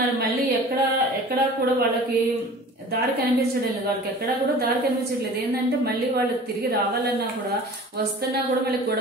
మళ్ళీ ఎక్కడ కూడా వాళ్ళకి దారి కనిపించడం లేదు. వాళ్ళకి ఎక్కడా కూడా దారి కనిపించట్లేదు. ఏంటంటే మళ్ళీ వాళ్ళు తిరిగి రావాలన్నా కూడా, వస్తున్నా కూడా మళ్ళీ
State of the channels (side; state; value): both; normal; correlation 0.42